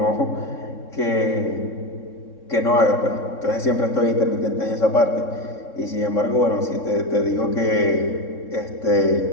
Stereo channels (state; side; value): late; right; 3.7 ms